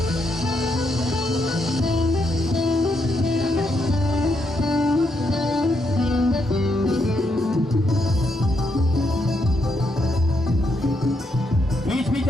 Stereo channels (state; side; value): normal; both; correlation 0.78